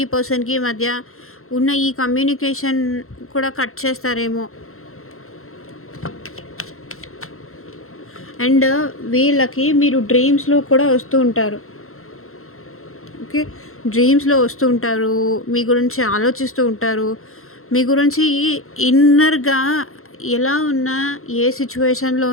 పర్సన్‌కి మధ్య ఉన్న ఈ కమ్యూనికేషన్ కూడా కట్ చేస్తారేమో. అండ్ వీళ్ళకి మీరు డ్రీమ్స్‌లో కూడా వస్తూ ఉంటారు. ఓకే. డ్రీమ్స్‌లో వస్తూ ఉంటారు. మీ గురించి ఆలోచిస్తూ ఉంటారు. మీ గురించి ఇన్నర్‌గా ఎలా ఉన్నా, ఏ సిట్యుయేషన్‌లో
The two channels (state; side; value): late; right; 0.62 ms